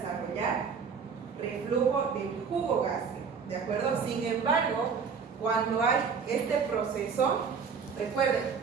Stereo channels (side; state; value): left; quieter; 5.9 dB